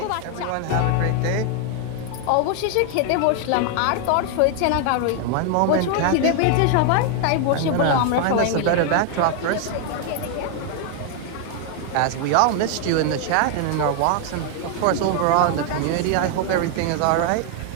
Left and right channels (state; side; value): different; both; correlation 0.00